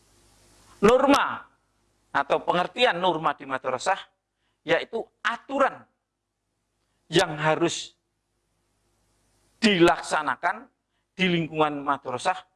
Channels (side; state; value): both; identical; correlation 1.00